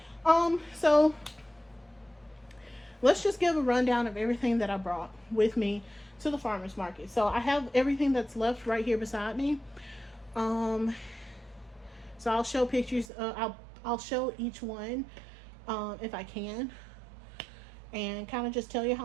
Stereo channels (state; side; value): drops out; left; at 13.1 s